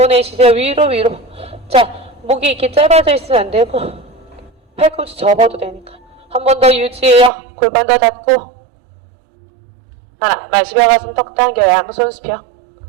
내쉬세요. 위로. 자, 목이 이렇게 짧아져 있으면 안 되고 팔꿈치 접어도 되니까 한 번 더 유지해요. 골반 더 닫고 하나, 마시며 가슴 턱 당겨 양손 수평.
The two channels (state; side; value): drops out; left; at 7.3 s